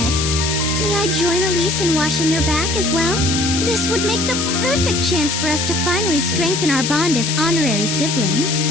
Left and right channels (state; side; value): noise; left; hiss, 2 dB below the sound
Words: may I join Elise in washing your back as well? This would make the perfect chance for us to finally strengthen our bond as honorary siblings.